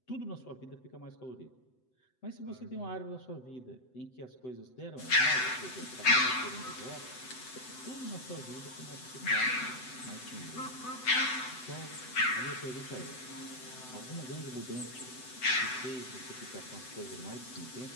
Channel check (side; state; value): right; late; 7.9 ms